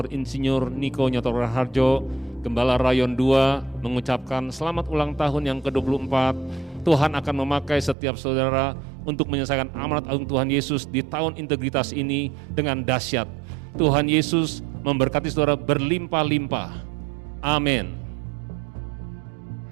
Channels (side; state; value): left; drops out; at 8.0 s